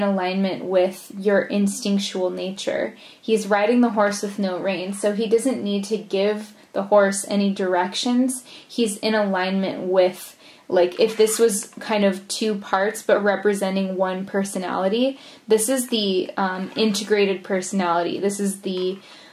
alignment with your instinctual nature. He's riding the horse with no reins, so he doesn't need to give the horse any directions. He's in alignment with like if this was kind of two parts but representing one personality, this is the integrated personality. This is the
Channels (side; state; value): both; identical; correlation 1.00